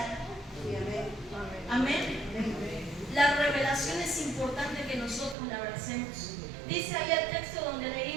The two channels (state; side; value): drops out; left; at 5.4 s